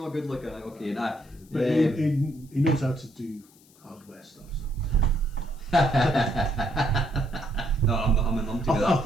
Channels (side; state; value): left; noise; hiss, 28 dB below the sound